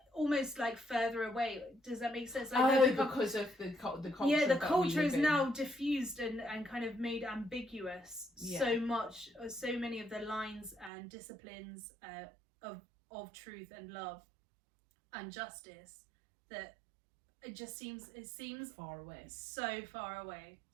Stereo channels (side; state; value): left; drops out; at 10.9 s